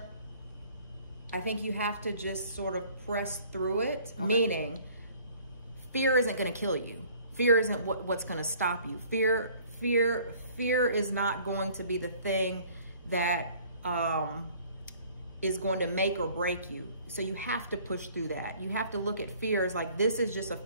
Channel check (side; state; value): both; inverted; correlation -0.55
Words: I think you have to just sort of press through it, meaning fear isn't going to kill you. Fear isn't what's going to stop you. Fear is not going to be the thing that is going to make or break you. So you have to push through that. You have to look at fear as like, this is just a